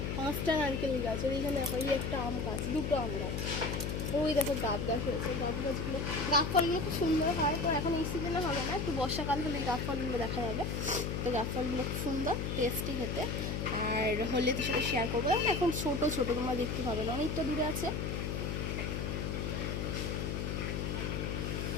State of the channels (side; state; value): left; noise; hum, 2 dB below the sound